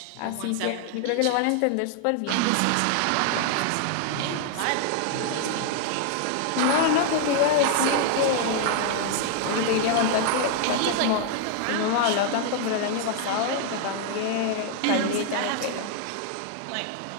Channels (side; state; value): both; different; correlation 0.00